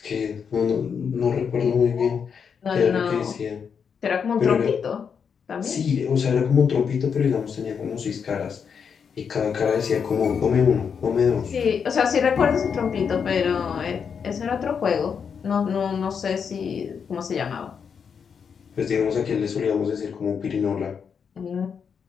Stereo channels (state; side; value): quieter; right; 6.7 dB